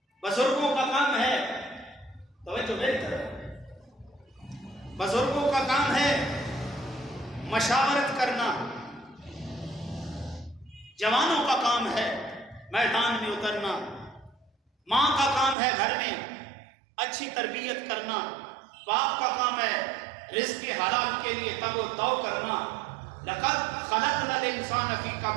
بزرگوں کا کام ہے، توجہ میری طرف، بزرگوں کا کام ہے مشاورت کرنا، جوانوں کا کام ہے میدان میں اترنا، ماں کا کام ہے گھر میں اچھی تربیت کرنا، باپ کا کام ہے رزق حلال کے لیے تگ و دو کرنا۔ لقد خلقنا الانسان فی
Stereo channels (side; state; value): left; drops out; at 15.6 s